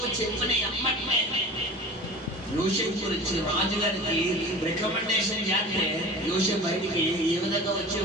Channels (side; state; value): both; normal; correlation 0.37